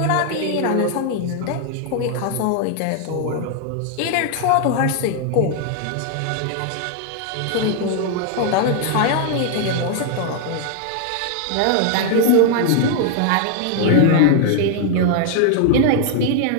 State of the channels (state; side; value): different; both; correlation 0.00